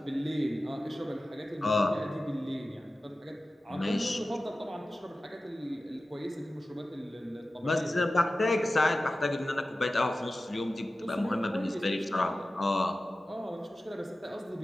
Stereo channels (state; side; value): normal; both; correlation 0.95